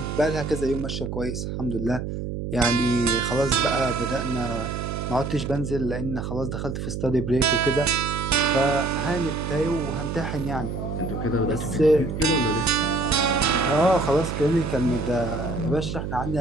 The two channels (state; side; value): noise; right; hum, 5 dB below the sound